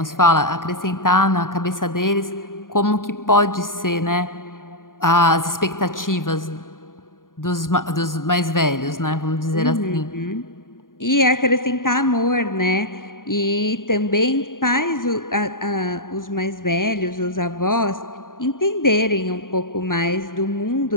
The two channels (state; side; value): late; right; 0.90 ms